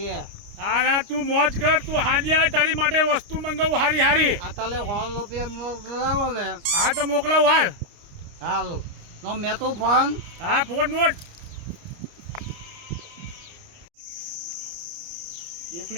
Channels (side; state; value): left; late; 29 ms